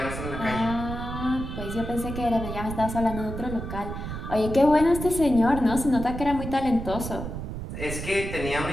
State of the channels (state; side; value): noise; right; rumble, 7 dB below the sound